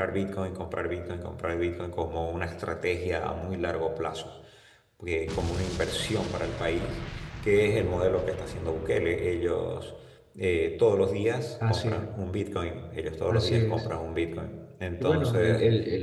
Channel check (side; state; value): both; identical; correlation 1.00